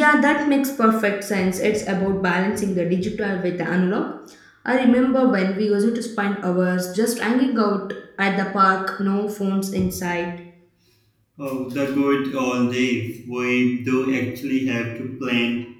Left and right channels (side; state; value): both; identical; correlation 1.00